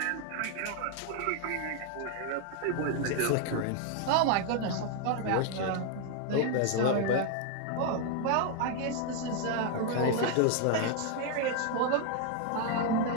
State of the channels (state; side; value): different; both; correlation 0.01